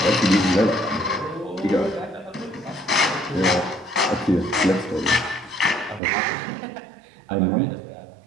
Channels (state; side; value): drops out; left; at 6.0 s